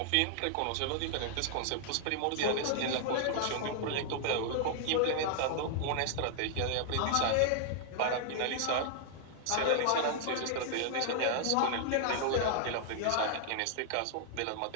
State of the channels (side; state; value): both; different; correlation -0.01